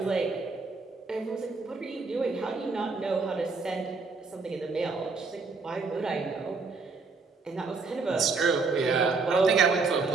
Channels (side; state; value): left; quieter; 4.2 dB